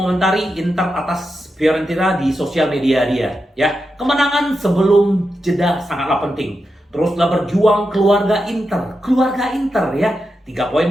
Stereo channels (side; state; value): both; normal; correlation 0.88